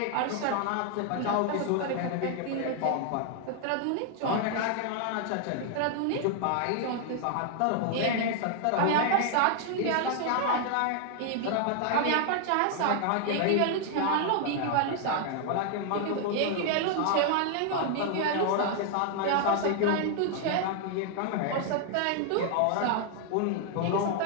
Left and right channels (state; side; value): different; both; correlation 0.00